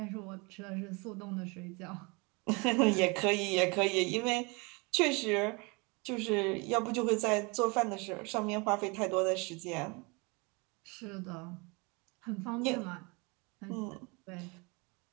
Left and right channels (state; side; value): quieter; left; 28.8 dB